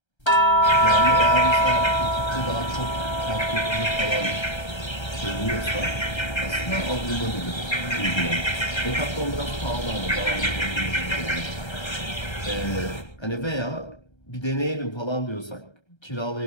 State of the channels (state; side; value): late; right; 1.3 ms